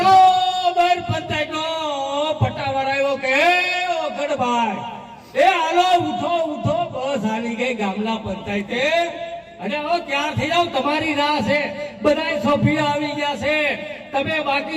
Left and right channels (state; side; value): identical; both; correlation 1.00